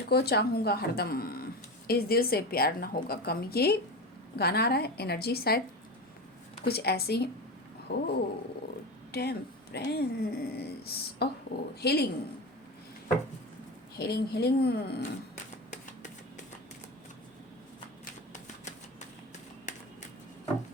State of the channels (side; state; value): both; normal; correlation 0.24